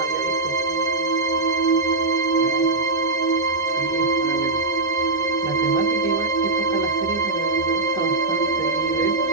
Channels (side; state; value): left; quieter; 3.4 dB